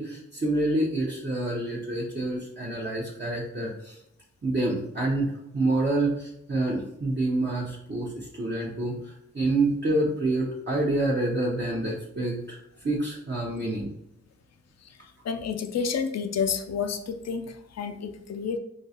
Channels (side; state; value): both; normal; correlation 0.59